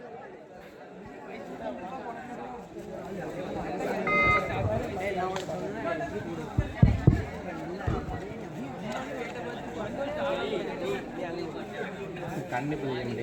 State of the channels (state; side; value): identical; both; correlation 1.00